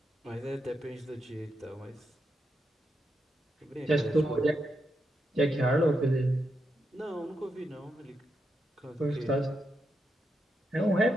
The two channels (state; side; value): normal; both; correlation 0.84